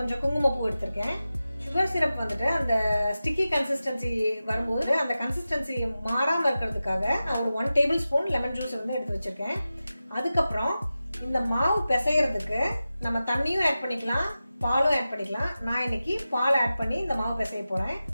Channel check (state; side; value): inverted; both; correlation -0.94